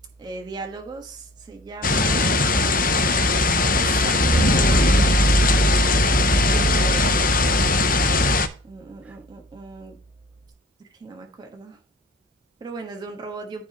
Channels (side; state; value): both; normal; correlation 0.49